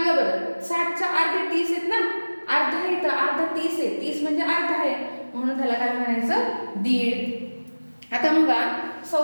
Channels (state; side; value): inverted; both; correlation -1.00